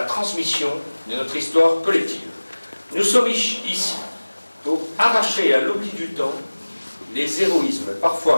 transmission de notre histoire collective. Nous sommes ici pour arracher à l'oubli du temps les héroïsmes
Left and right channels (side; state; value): both; inverted; correlation -1.00